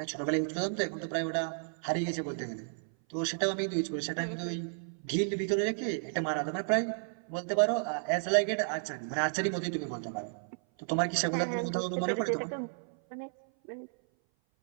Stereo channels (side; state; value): left; silent; 56 dB below the other